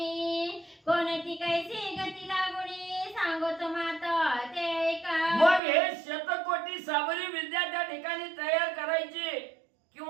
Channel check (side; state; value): left; drops out; at 5.6 s